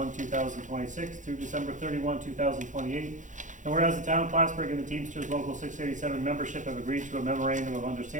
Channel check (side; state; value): left; late; 0.36 ms